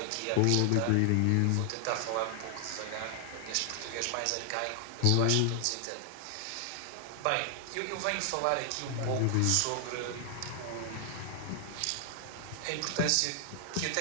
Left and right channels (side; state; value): both; different; correlation 0.00